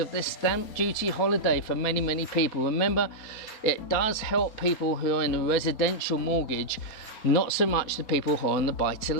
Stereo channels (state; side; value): late; right; 4.3 ms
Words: the stamp duty holiday for many people. Remember, it does help people who are in the residential mortgage, not so much the people who are on the